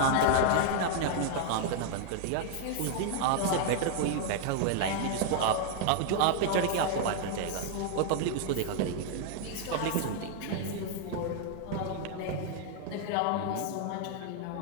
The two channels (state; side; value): different; both; correlation 0.00